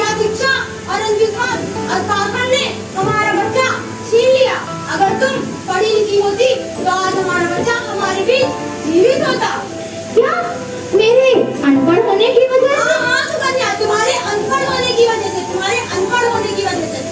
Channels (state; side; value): identical; both; correlation 1.00